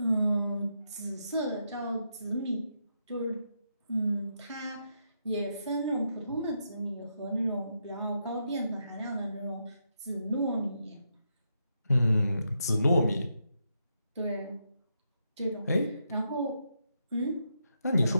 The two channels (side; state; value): both; inverted; correlation -0.81